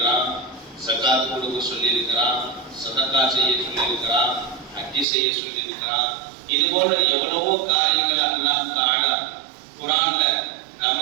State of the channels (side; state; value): left; drops out; at 5.1 s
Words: ஸகாத் கொடுக்க சொல்லியிருக்கிறான், சதகா செய்ய சொல்லியிருக்கிறான், ஹஜ் செய்ய சொல்லியிருக்கிறான். இது போல எவ்வளவோ காரியங்கள் அல்லாஹ் தஆலா குர்ஆன்ல நம்ம